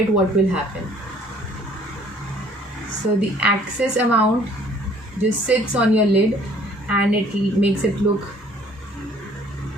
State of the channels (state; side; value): normal; both; correlation 0.57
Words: what will happen. So the excess amount just sits on your lid and it makes it look